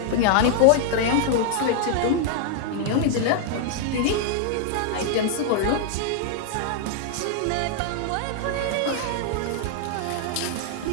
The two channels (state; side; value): different; both; correlation 0.00